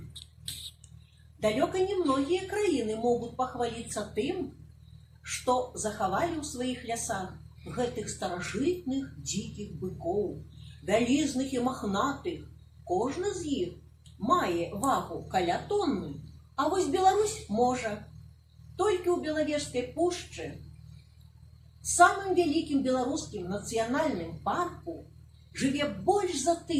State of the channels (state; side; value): identical; both; correlation 1.00